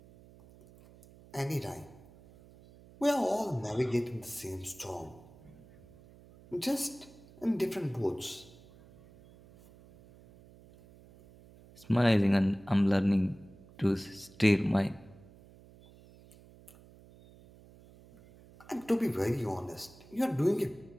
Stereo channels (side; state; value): right; noise; hum, 23 dB below the sound